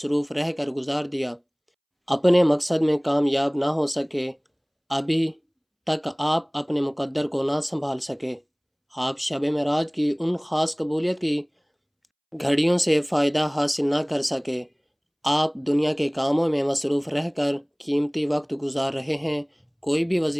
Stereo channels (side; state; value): both; identical; correlation 1.00